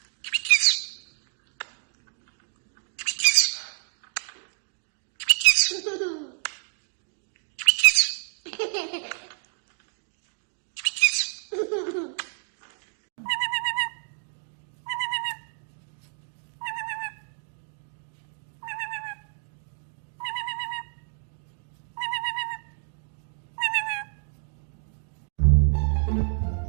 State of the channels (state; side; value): silent; left; 59 dB below the other